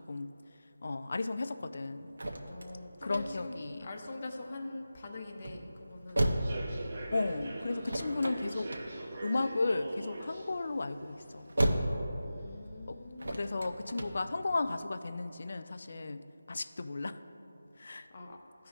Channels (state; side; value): inverted; both; correlation -0.95